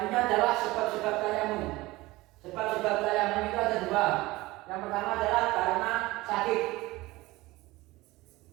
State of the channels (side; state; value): left; quieter; 19.9 dB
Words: adalah sebab-sebab tayamum. Sebab-sebab tayamum itu ada dua. Yang pertama adalah karena sakit.